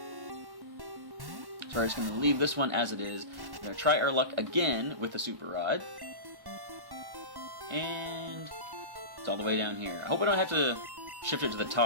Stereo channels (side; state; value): left; late; 1.1 ms